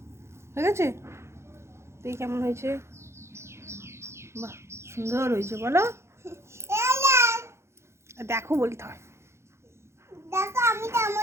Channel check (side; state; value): left; late; 0.13 ms